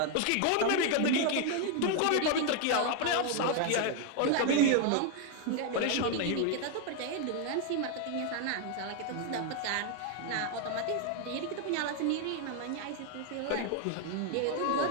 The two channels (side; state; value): both; different; correlation 0.00